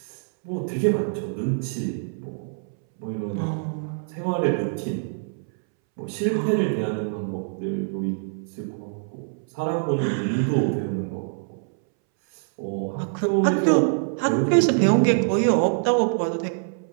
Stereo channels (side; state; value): left; silent; 62 dB below the other